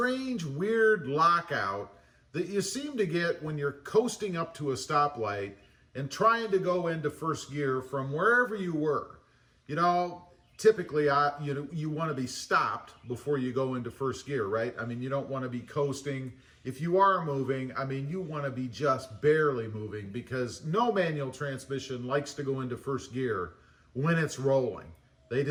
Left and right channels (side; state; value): both; identical; correlation 1.00